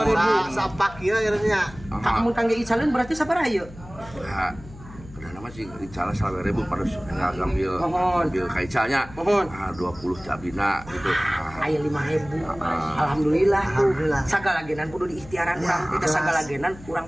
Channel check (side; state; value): left; noise; hum, 18 dB below the sound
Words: Sapak ieu nya. Mun kangge icaleun berarti sabaraha ieu? Ya. Nama sih dicala 20.000 pada ngambil kaicanya 20 cabina gitu. Aya 5.000. Alhamdulillah tuh. Sagala genan kudu diikhtiaran urang. Kita sagala genan